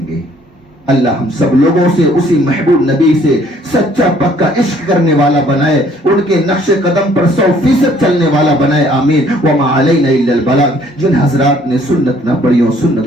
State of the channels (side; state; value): both; normal; correlation 0.60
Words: گے. اللہ ہم سب لوگوں سے اسی محبوب نبی سے سچا پکا عشق کرنے والا بنائے, ان کے نقش قدم پر 100% چلنے والا بنائے. آمین. وما علینا الا البلاغ. جن حضرات نے سنت نہ پڑھی ہو